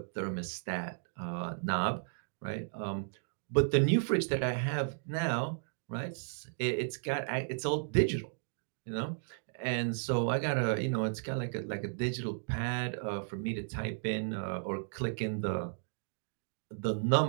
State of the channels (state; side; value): silent; left; digital silence